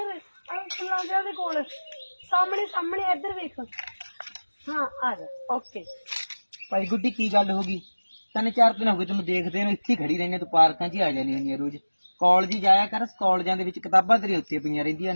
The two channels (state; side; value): inverted; both; correlation -1.00